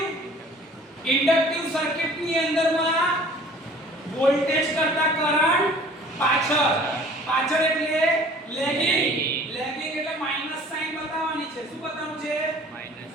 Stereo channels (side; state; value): both; normal; correlation 0.49